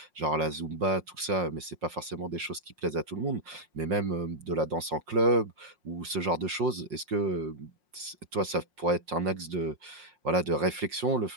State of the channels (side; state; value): left; late; 5.6 ms